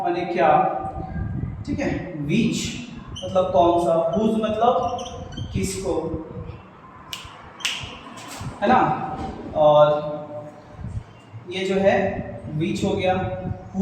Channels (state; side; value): identical; both; correlation 1.00